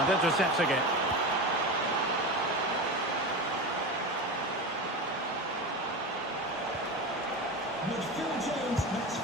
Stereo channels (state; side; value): normal; both; correlation 0.23